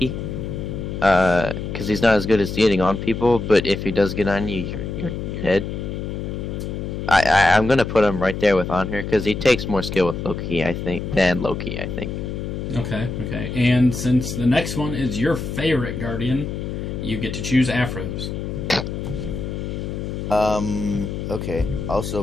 he's not as good as getting on people. But if he does get on you, you're dead. I'm gonna put him right there with on her because he takes more skill with Loki, I think, than Loki, I think. Okay. And since the next one is your favorite Guardian, you get to choose Afros. Okay. Also,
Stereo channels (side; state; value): left; noise; hum, 5 dB below the sound